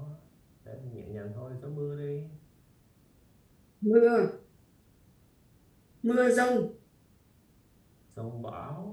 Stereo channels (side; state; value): both; identical; correlation 1.00